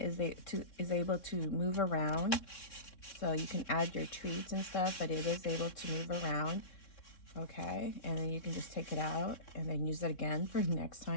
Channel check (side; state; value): right; late; 3.6 ms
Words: is able to move around, so you can add your treats and stuff, but it is able to move around. Okay, and then you can just take it out and then use it again for next